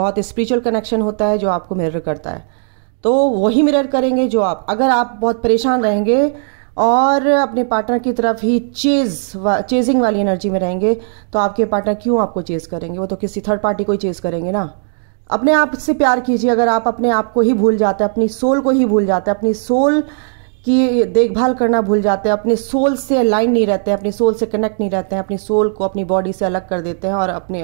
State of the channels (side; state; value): left; silent; digital silence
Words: स्पिरिचुअल कनेक्शन होता है जो आपको मिरर करता है, तो वही मिरर करेंगे जो आप। अगर आप बहुत परेशान रहेंगे और अपने पार्टनर की तरफ ही चेजिंग वाली एनर्जी में रहेंगे, तो आपके पार्टनर क्यों आपको चेज करेंगे, वो तो किसी थर्ड पार्टी को ही चेज करेंगे ना। अपने आप से प्यार कीजिए। अगर आप अपने आप को ही भूल जाते हैं, अपनी सोल को ही भूल जाते हैं, अपनी सोल की देखभाल करना भूल जाते हैं, अपने सोल से अलाइन नहीं रहते हैं, अपनी सोल से कनेक्ट नहीं रहते हैं, अपनी सोल को अपनी बॉडी से अलग कर देते हैं और अपने